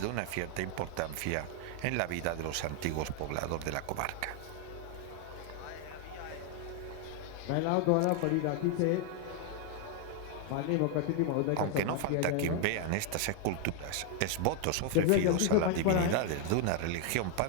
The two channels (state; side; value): different; both; correlation 0.00